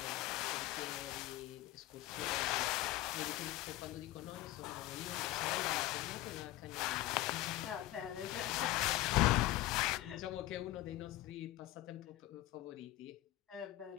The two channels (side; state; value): right; quieter; 15.9 dB